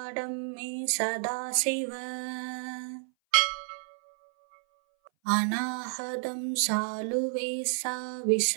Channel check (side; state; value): left; silent; 58 dB below the other